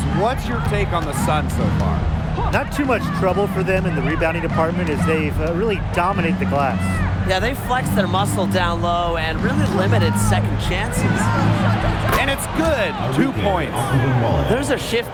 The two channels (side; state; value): both; identical; correlation 1.00